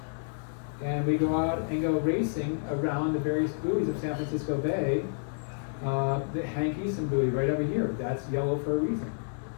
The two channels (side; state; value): right; silent; digital silence